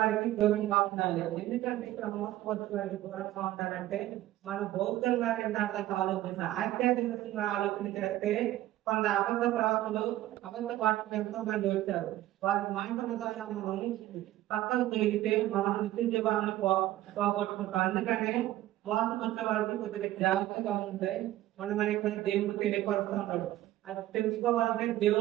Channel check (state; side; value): quieter; left; 14.8 dB